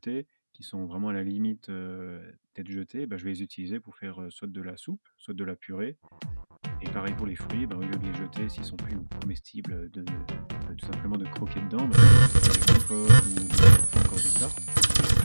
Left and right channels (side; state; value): both; inverted; correlation -1.00